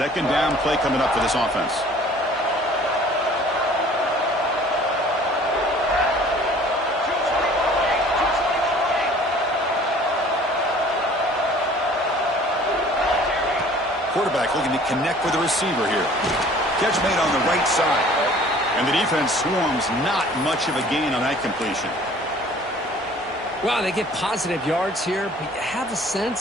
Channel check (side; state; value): both; normal; correlation 0.51